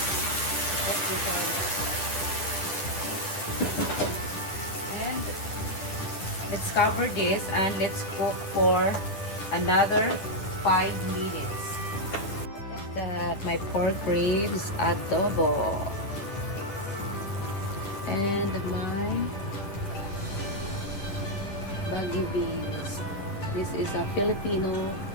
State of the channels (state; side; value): late; right; 10 ms